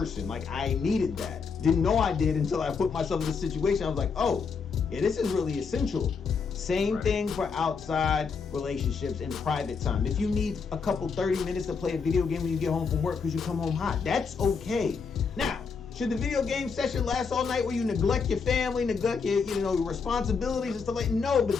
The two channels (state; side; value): quieter; right; 5.5 dB